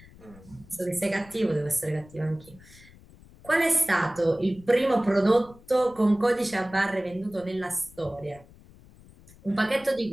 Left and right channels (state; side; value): noise; left; rumble, 23 dB below the sound